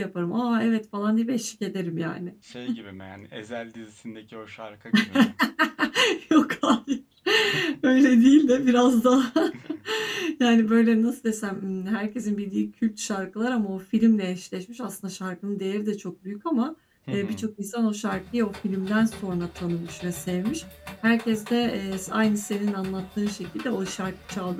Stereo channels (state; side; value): identical; both; correlation 1.00